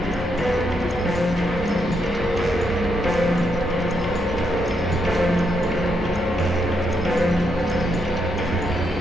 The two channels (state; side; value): normal; both; correlation 0.79